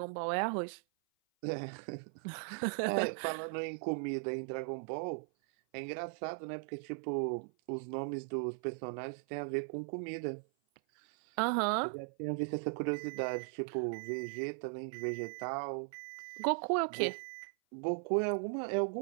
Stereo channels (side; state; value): left; silent; 52 dB below the other